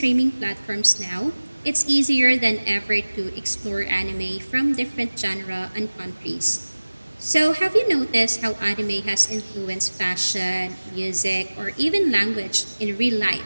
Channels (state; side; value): inverted; both; correlation -1.00